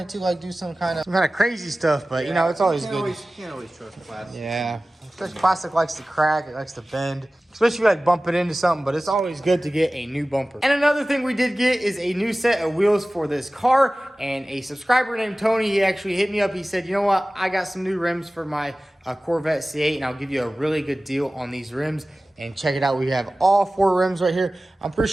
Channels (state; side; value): normal; both; correlation 0.97